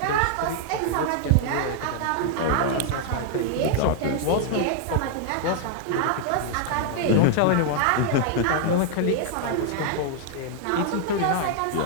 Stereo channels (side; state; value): both; different; correlation 0.00